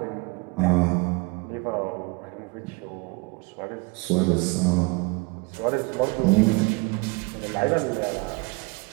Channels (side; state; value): left; quieter; 27.7 dB